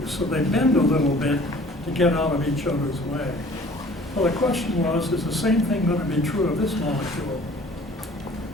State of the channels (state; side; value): normal; both; correlation 0.50